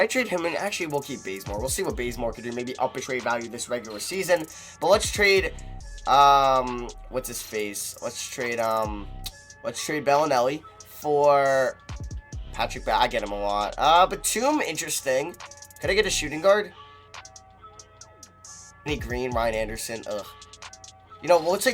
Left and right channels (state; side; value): identical; both; correlation 1.00